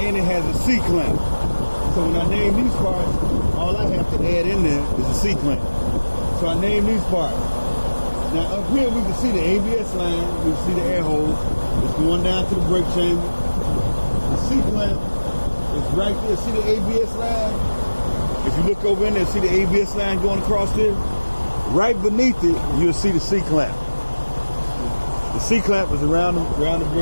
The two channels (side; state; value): both; inverted; correlation -1.00